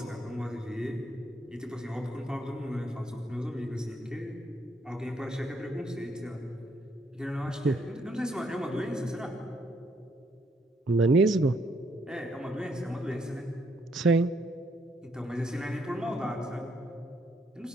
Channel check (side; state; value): both; normal; correlation 0.72